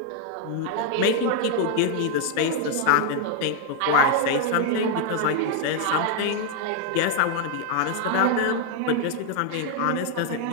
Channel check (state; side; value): different; both; correlation 0.00